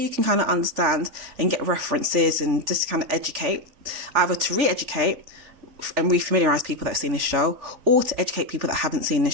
can kind of understand and get references and just kind of educate, either to re-educate and re-familiarise people that have seen this show, or to educate people that haven't seen this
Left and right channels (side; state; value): left; late; 3.5 ms